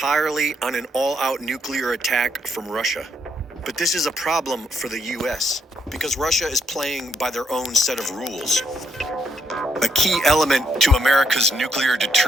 on an all-out nuclear attack from Russia. But this is a problem for the US, because Russia is playing by their own set of rules. A key element to America's nuclear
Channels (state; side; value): normal; both; correlation 0.76